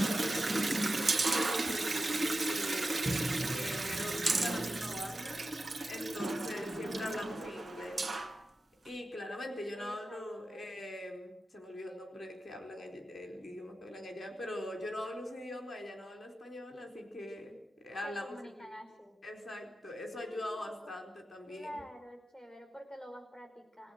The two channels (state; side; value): normal; both; correlation 0.92